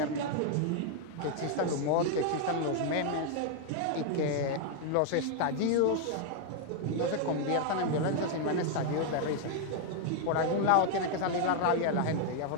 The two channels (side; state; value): both; different; correlation 0.00